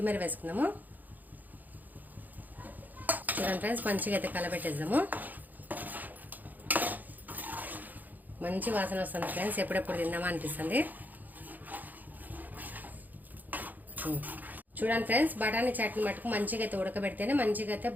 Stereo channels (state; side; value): late; left; 0.084 ms